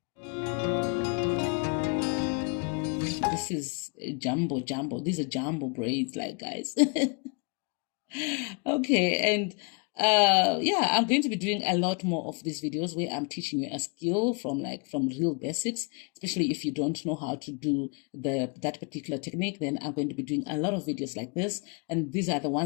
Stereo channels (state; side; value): quieter; right; 33.5 dB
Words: This is jumbo. These are jumbo braids, like, guys. Okay, and yeah, I'm going to be doing a lot more of these videos where I'm teaching you a skill from real basics, especially if you don't know how to do that particular technique. Then I'm going to be doing a lot of videos like this, and these are the